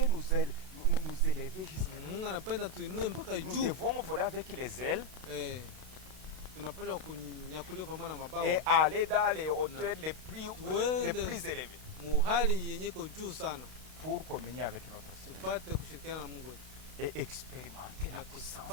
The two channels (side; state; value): left; late; 32 ms